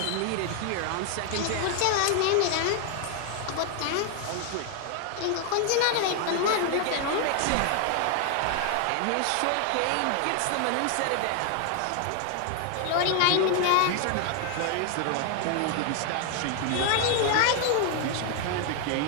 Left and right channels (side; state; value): both; different; correlation 0.00